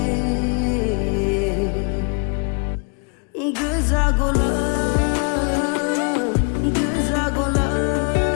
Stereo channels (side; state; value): right; quieter; 35.2 dB